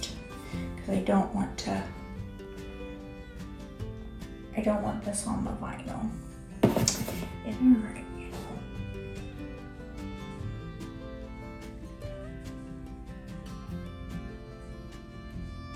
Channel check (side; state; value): both; identical; correlation 1.00